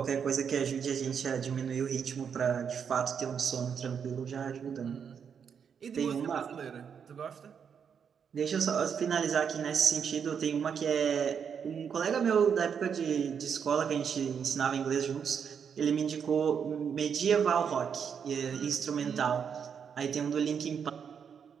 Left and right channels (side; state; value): left; quieter; 7.2 dB